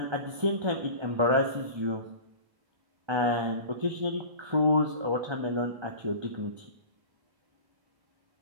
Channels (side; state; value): left; late; 1.3 ms